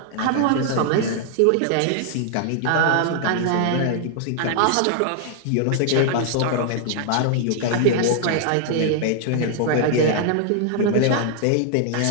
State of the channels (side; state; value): both; different; correlation 0.00